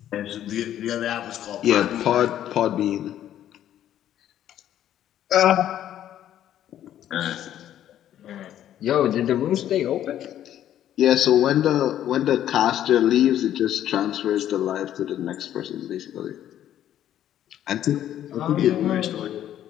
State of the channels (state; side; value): quieter; right; 11.4 dB